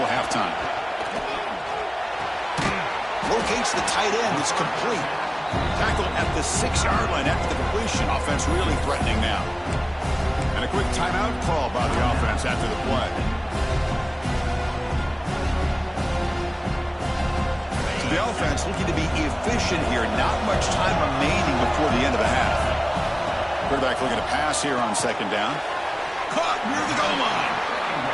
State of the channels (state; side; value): identical; both; correlation 1.00